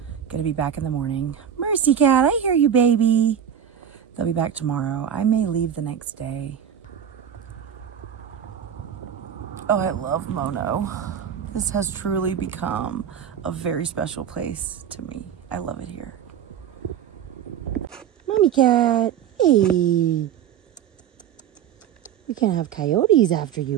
going to be back in the morning. Mercy Cat, I hear you, baby. They'll be back tomorrow. I may leave the next day. Oh, I love Mono. This has truly become a very special place to me. I love it here. Mommy Cat, hey. We can't have coyotes after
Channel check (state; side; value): quieter; left; 8.9 dB